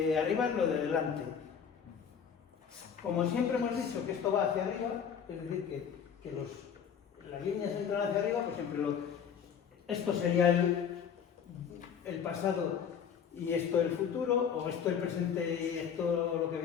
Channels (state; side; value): quieter; right; 7.5 dB